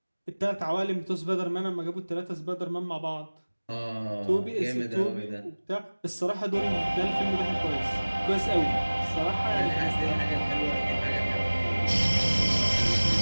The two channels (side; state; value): both; inverted; correlation -1.00